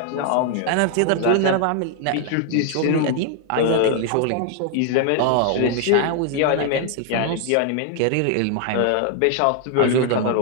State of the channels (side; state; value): both; different; correlation 0.00